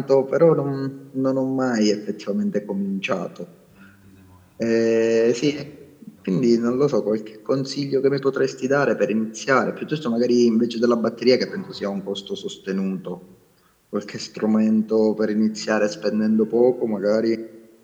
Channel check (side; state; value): both; identical; correlation 1.00